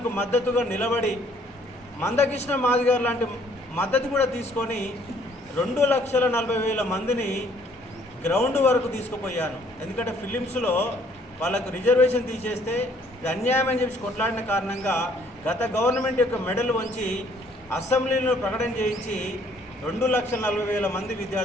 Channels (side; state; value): both; normal; correlation 0.62